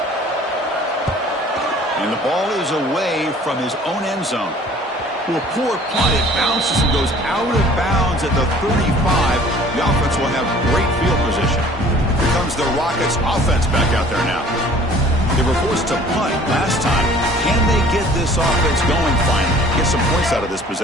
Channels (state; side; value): normal; both; correlation 0.51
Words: And the ball is away from his own end zone. Well, poor punt. It bounces and goes out of bounds at the 35. The offense will have great field position. Here comes the Rockets offense back out there now. They were forced to punt last time. Can they get this offense going finally? Get some points out of this